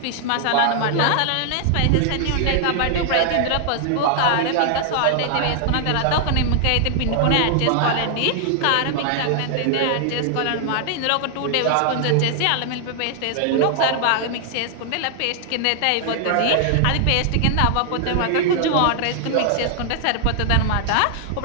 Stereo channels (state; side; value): different; both; correlation 0.00